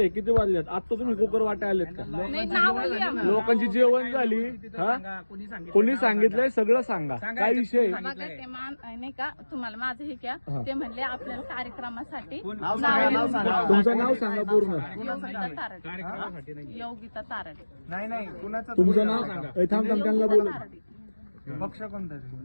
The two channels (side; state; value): both; inverted; correlation -1.00